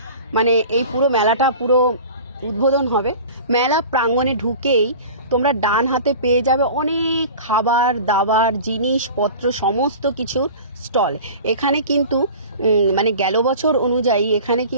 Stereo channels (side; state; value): both; inverted; correlation -0.39